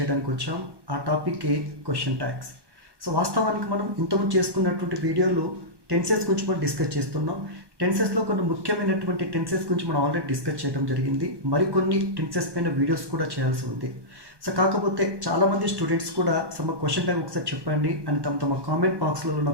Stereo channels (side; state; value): left; late; 1.2 ms